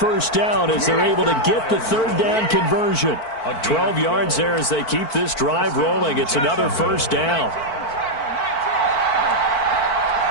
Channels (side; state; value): right; late; 4.5 ms